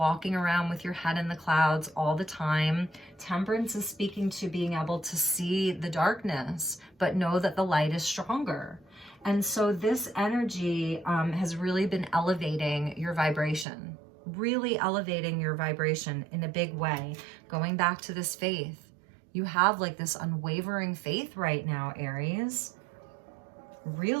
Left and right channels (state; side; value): drops out; left; at 13.7 s